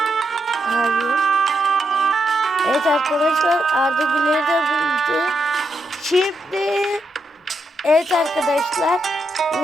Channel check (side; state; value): both; normal; correlation 0.82